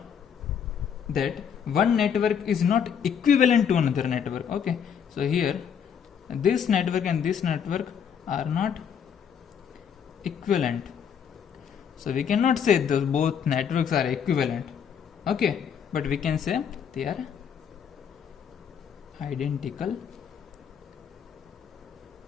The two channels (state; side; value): quieter; right; 7.7 dB